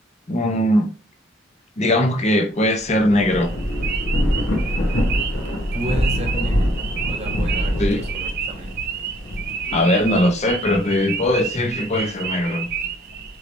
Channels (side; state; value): both; normal; correlation 0.62